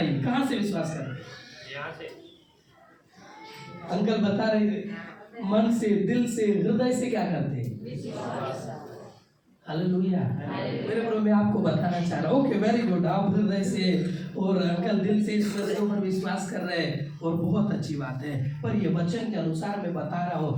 कहां से विश्वास करते हैं? यहाँ से। अंकल बता रहे थे, मन से, दिल से, हृदय से क्या करते हैं? हालेलुया। मेरे प्रभु, मैं आपको बताना चाह रहा हूँ, ओके वेरी गुड, आप हृदय से और अंकल दिल से इस वचन पर विश्वास कर रहे हैं, और बहुत अच्छी बात है। पर ये वचन के अनुसार मैं बता रहा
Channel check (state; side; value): identical; both; correlation 1.00